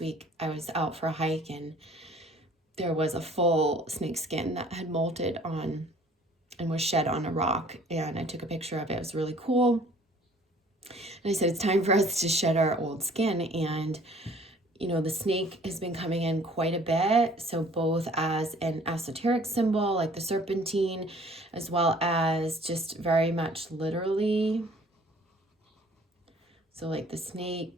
I was out for a hike and there was a full snake skin that had molted on and was shed on a rock, and I took a picture of it. It was really cool. And I said, it's time for us to shed our old skin. And the snake has been coming in quite a bit. So both as an esoteric symbol, like the serpentine, as well as just very much literally. So like the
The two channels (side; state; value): both; normal; correlation 0.54